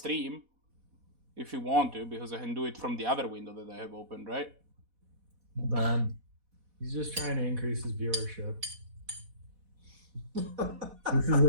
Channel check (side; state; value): left; late; 4.1 ms